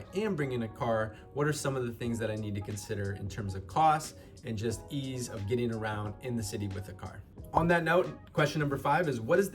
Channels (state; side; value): identical; both; correlation 1.00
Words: am bringing a car, what are some of the things that I need to consider in terms of cost and just ease of getting around in the city with a car? On that note, question number 5 is, what is